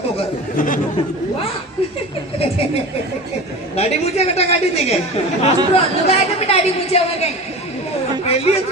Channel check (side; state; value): both; normal; correlation 0.32